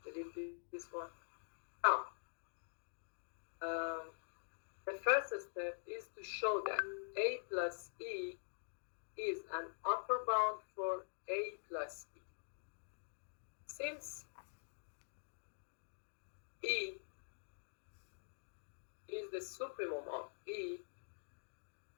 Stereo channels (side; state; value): right; silent; digital silence